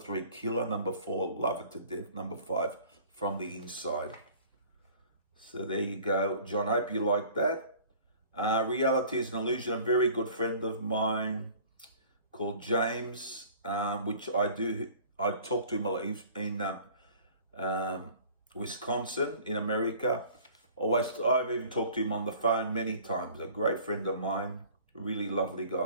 Killer, number 4, Love It to Death, number 5, From the Inside. So there you go, John. I hope you like that. Reality is an Illusion. A very good friend of mine called James, which I talk to him a lot. He's in Wisconsin, in America. I've even talked to him on the phone many times. A great friend of mine, really lovely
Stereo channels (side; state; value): both; inverted; correlation -0.49